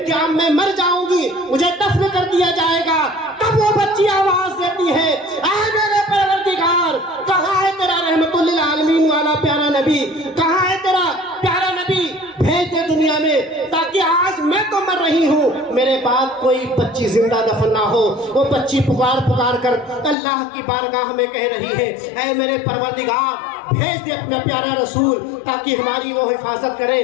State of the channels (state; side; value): drops out; right; at 20.2 s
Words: کہ اب میں مر جاؤں گی، مجھے دفن کر دیا جائے گا، تب وہ بچی آواز دیتی ہے اے میرے پروردگار، کہاں ہے تیرا رحمت للعالمین والا پیارا نبی، کہاں ہے تیرا پیارا نبی، بھیج دے دنیا میں تاکہ آج میں تو مر رہی ہوں، میرے بعد کوئی بچی زندہ دفن نہ ہو. وہ بچی پکار کر اللہ کی بارگاہ میں کہہ رہی ہے اے میرے پروردگار، بھیج دے اپنا پیارا رسول تاکہ ہماری وہ حفاظت کرے،